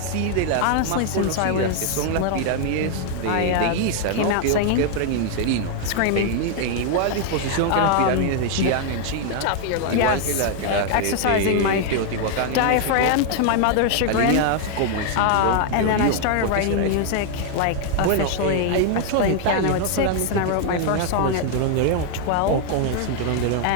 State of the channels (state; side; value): different; both; correlation 0.00